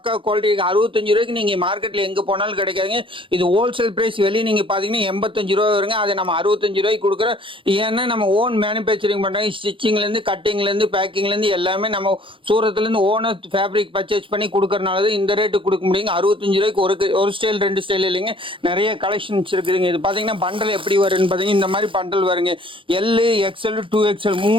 குவாலிட்டி இருக்கு. 65 ரூபாய்க்கு நீங்க மார்க்கெட்ல எங்க போனாலும் கிடைக்காதுங்க. இது ஹோல்சேல் பிரைஸ். வெளியே நீங்க பாத்தீங்கன்னா 85 ரூபா வருங்க. அதை நம்ம 65 ரூபாய்க்கு கொடுக்குறோம். ஏன்னா நம்ம ஓன் மேனுபேக்சரிங் பண்றாங்க. ஸ்டிச்சிங்ல இருந்து, கட்டிங்ல இருந்து, பேக்கிங்ல இருந்து எல்லாமே நம்ம சூரத்துல இருந்து ஓனர் ஃபேப்ரிக் பர்ச்சேஸ் பண்ணி கொடுக்கறனால இந்த ரேட்டு கொடுக்க முடியுங்க. 65 ரூபாய்க்கு ஒரு ஸ்டைல் 2 ஸ்டைல் இல்லைங்க. நிறைய கலெக்ஷன்ஸ் இருக்குதுங்க. இது பாத்தீங்கன்னா பண்டல் எப்படி வரும்னு பாத்தீங்கன்னா இந்த மாதிரி பண்டல் வருங்க. எல்இ எக்ஸ்எல் 2XL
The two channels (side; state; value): left; late; 0.25 ms